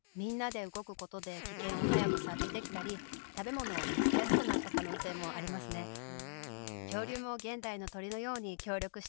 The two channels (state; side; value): silent; right; digital silence